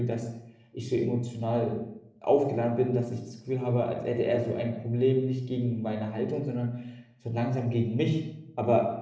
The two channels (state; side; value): identical; both; correlation 1.00